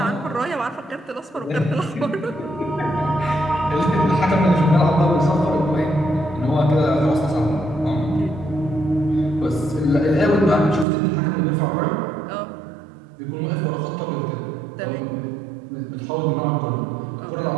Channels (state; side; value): drops out; left; at 10.9 s